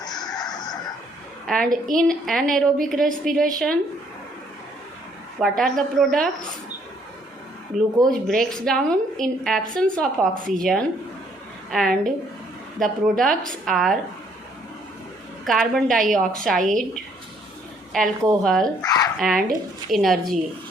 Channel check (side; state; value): both; normal; correlation 0.66